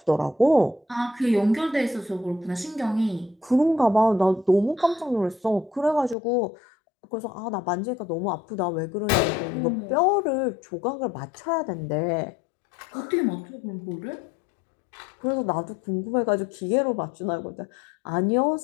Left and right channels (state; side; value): drops out; right; at 6.2 s